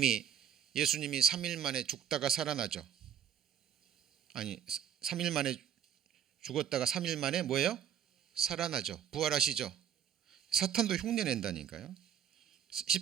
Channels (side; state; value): left; quieter; 9.3 dB